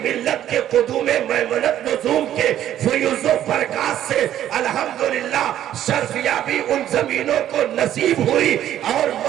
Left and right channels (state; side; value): quieter; left; 11.5 dB